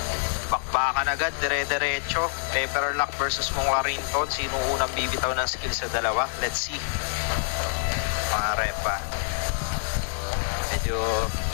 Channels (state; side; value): silent; right; digital silence